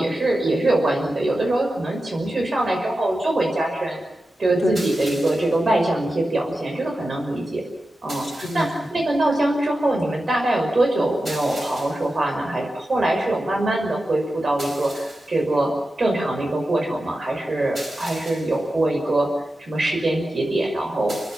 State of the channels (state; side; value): normal; both; correlation 0.92